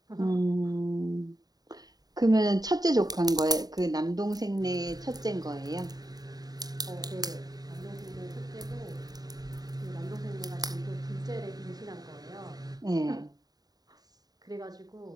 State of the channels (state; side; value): late; left; 0.19 ms